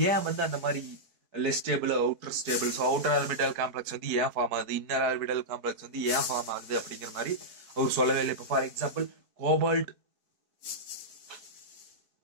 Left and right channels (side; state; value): left; late; 4.5 ms